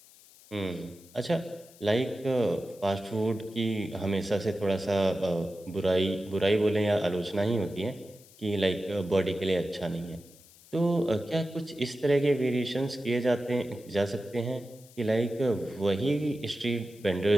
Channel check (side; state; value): left; noise; hiss, 24 dB below the sound